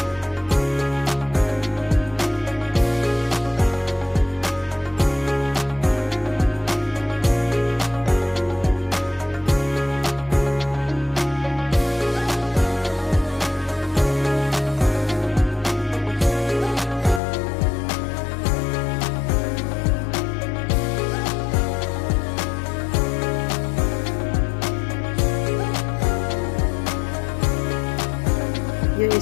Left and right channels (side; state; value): right; drops out; at 17.2 s